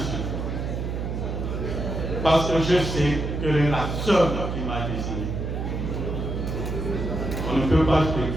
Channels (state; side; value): noise; right; hum, 3 dB below the sound